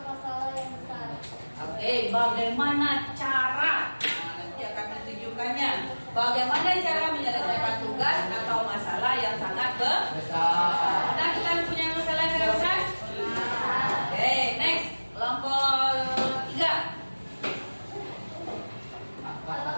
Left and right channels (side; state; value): both; inverted; correlation -1.00